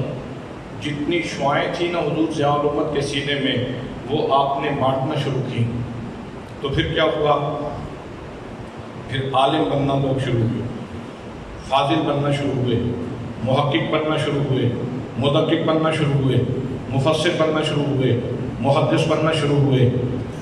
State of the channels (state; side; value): identical; both; correlation 1.00